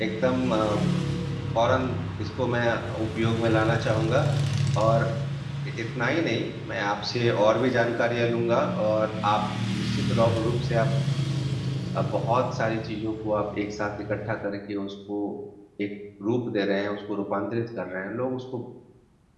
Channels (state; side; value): identical; both; correlation 1.00